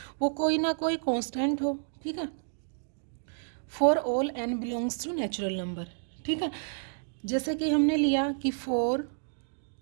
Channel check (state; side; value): silent; left; digital silence